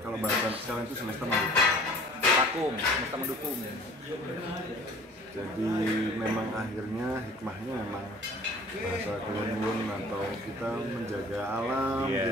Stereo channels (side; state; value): both; normal; correlation 0.48